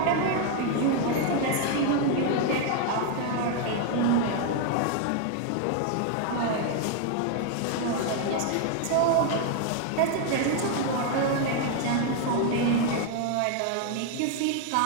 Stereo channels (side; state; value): both; different; correlation 0.00